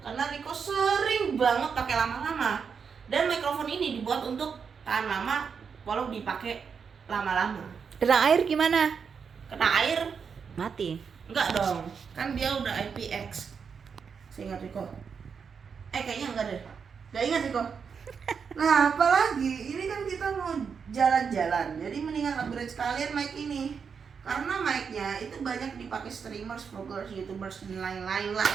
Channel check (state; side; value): quieter; left; 6.2 dB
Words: Karena Rico sering banget pakai lama-lama. Dan mikrofon ini dibuat untuk tahan lama walau dipakai lama-lama. Kena air gimana? Kena air Mati. enggak dong, kan dia udah IPX. Seingat Rico. Kayaknya enggak deh. Enggak ingat Rico. Nah, apalagi ini kan kita mau jalan-jalan. Jadi mendingan upgrade sekalian mic ini. Karena mic-nya itu banyak dipakai streamers, vloggers, youtubers, dan lain-lain lah.